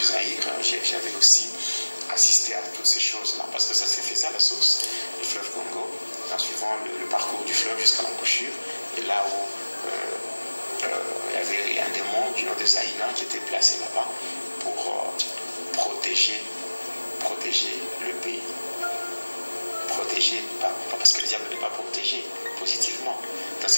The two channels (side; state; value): both; inverted; correlation -1.00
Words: J'avais aussi assisté à toutes ces choses-là, parce que ça s'est fait ça, la source du fleuve Congo, en suivant le parcours du fleuve jusqu'à l'embouchure, et là où il y avait un démon du nom de Zaïna qui était placé là-bas pour protéger le pays. Protéger, parce que le diable n'est pas protégé positivement. Donc